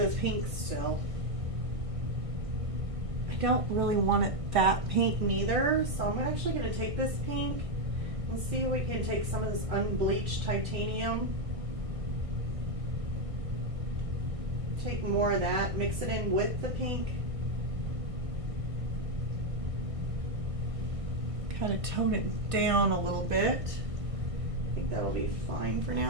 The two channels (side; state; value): left; late; 1.6 ms